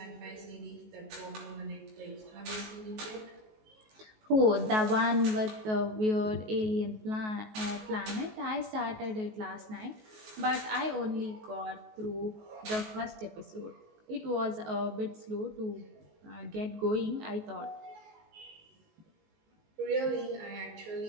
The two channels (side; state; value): left; late; 19 ms